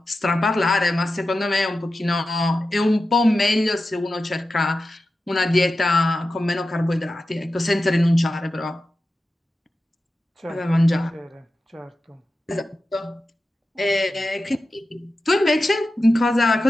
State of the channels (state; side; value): normal; both; correlation 0.92